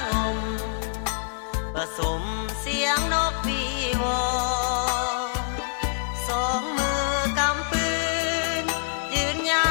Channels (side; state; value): right; silent; digital silence